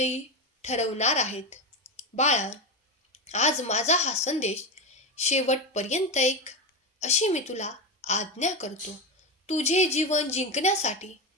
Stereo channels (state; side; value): normal; both; correlation 0.15